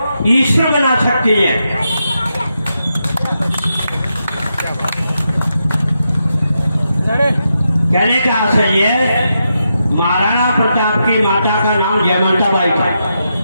ईश्वर बना सकती है। कहने का आशय ये, महाराणा प्रताप की माता का नाम जयवंता बाई था।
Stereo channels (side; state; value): both; inverted; correlation -0.85